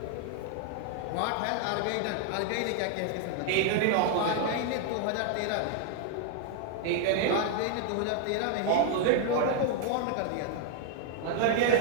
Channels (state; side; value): different; both; correlation 0.00